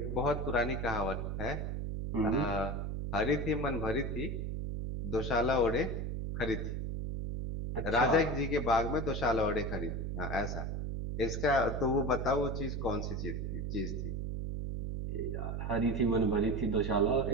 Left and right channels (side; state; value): right; noise; hum, 3 dB below the sound